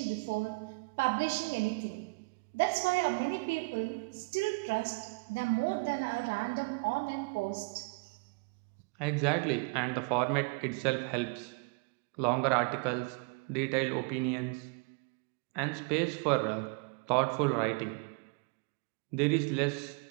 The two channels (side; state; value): left; quieter; 31.1 dB